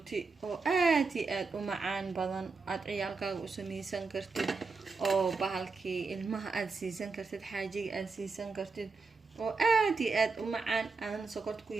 oo aad iyo aad u macaan badan aad ciyaalkaaga u sameysan kartid oo bahalkii ilmaha aad siisan kartid xaajiga aad siisan kartid oo aad iyo aad u macaan aan sokorta ku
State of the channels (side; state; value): left; quieter; 4.4 dB